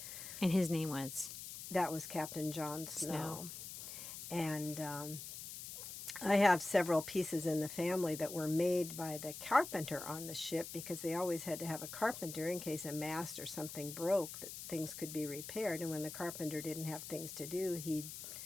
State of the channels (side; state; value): left; noise; hiss, 9 dB below the sound